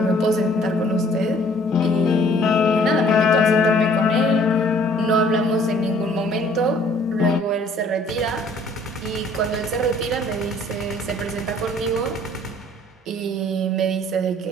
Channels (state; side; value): normal; both; correlation 0.57